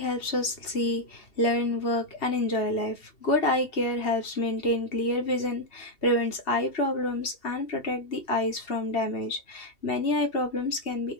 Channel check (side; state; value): right; late; 2.7 ms